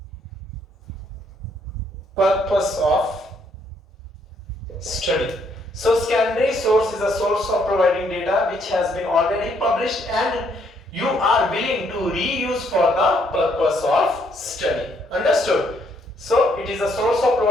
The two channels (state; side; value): normal; both; correlation 0.70